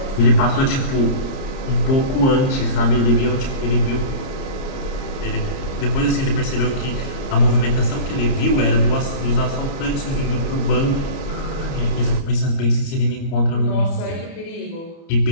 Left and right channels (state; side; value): late; right; 30 ms